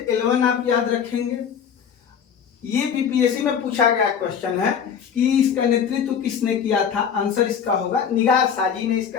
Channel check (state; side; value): quieter; right; 7.5 dB